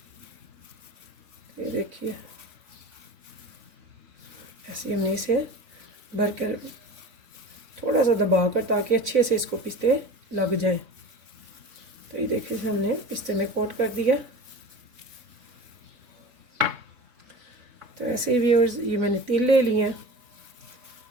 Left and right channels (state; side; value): late; left; 3.5 ms